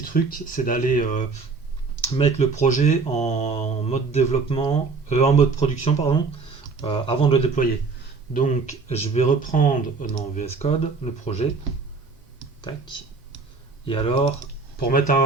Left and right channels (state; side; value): quieter; left; 4.4 dB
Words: truc, c'est d'aller mettre le projet en mode développement, en mode production, pardon, avant de le déployer. Donc je vais reprendre dans VS Code le projet. Tac. Et alors, pour mettre